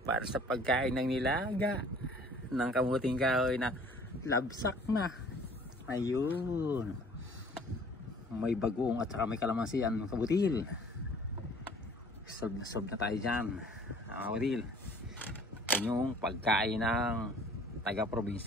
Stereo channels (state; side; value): normal; both; correlation 0.53